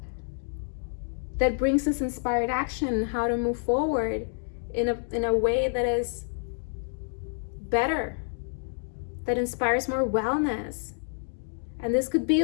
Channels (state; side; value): silent; right; digital silence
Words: that brings us inspired action, how to move forward in a way that is better, that inspires more wellness. And this could be